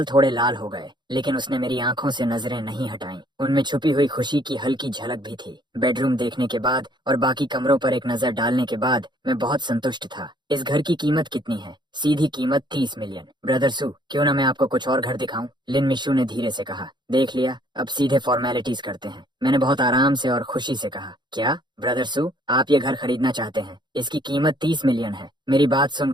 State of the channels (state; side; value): late; left; 0.22 ms